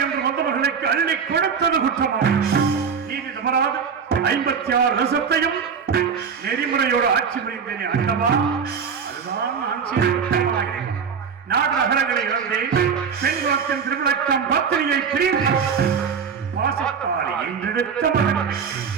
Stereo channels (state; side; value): quieter; left; 6.4 dB